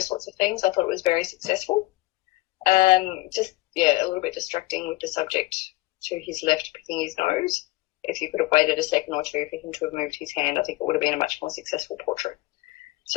sorts of things, I thought it was very successful. A little bit distracting with the subject to his left picking his nose. If you could have waited a second or two for him to have moved his hand, I think it would have been a much more successful portrait.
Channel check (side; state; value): right; quieter; 20.2 dB